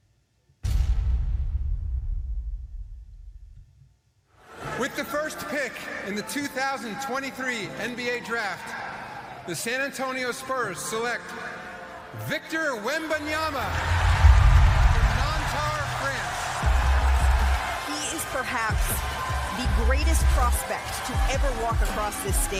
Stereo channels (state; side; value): identical; both; correlation 1.00